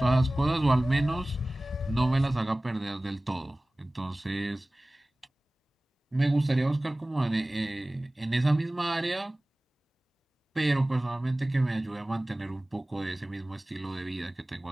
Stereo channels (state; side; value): normal; both; correlation 0.98